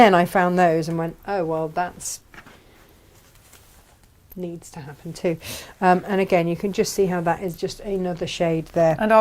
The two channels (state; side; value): identical; both; correlation 1.00